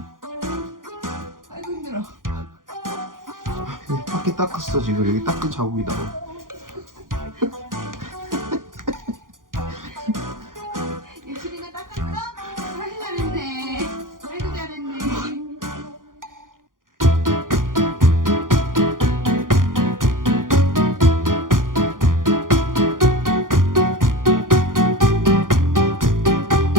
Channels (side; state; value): left; late; 0.90 ms